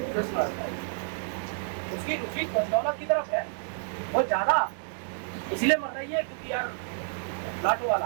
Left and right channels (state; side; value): silent; left; 56 dB below the other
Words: उसकी रुचि दौलत की तरफ है, वो ज्यादा इसलिए मर रही है क्योंकि यार लाटो वाला